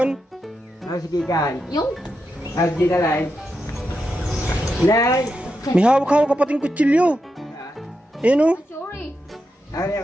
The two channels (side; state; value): both; normal; correlation 0.86